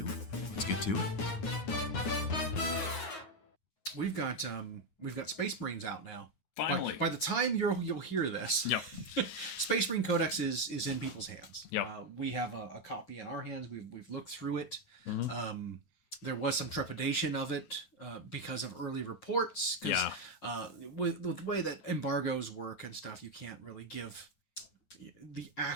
let's get to it. We've got Space Marines out now. Finally. By the time you'll hear this, yep. Space Marine Codex is in people's hands. Yep. We have a copy in our hands. We've looked through it. Mm-hmm. There was some trepidation of it because of early reports. Because with the way that embargoes work and stuff, you can't really give the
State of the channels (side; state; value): right; late; 9.5 ms